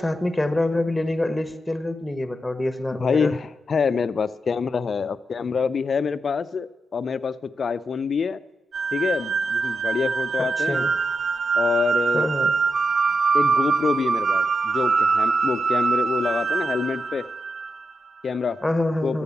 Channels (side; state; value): both; normal; correlation 0.85